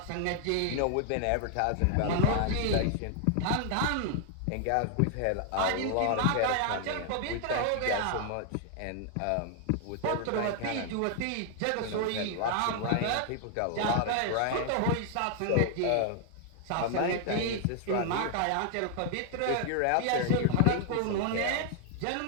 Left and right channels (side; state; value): both; different; correlation 0.00